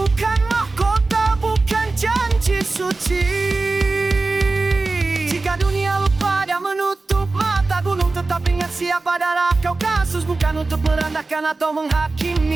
mahkota, bukan janji suci. Jika dunia lupa dan menutup mata, gunung tetap ingat siapa. Darah Kaukasus bukan untuk merendahkan atau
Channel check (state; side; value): quieter; left; 3.5 dB